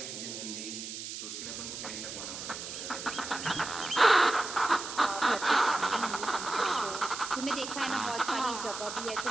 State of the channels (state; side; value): noise; right; hiss, 8 dB below the sound